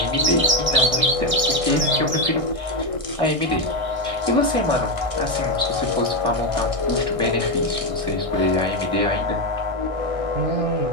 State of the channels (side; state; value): left; late; 1.6 ms